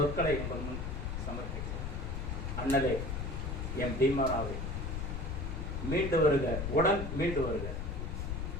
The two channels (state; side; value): noise; left; rumble, 3 dB below the sound